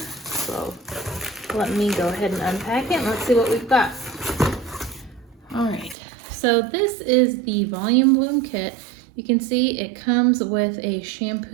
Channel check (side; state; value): left; drops out; at 6.0 s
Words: So let me go ahead and unpack it and let's see what we've got. Alright, so this is the Volumebloom kit. You can see it comes with a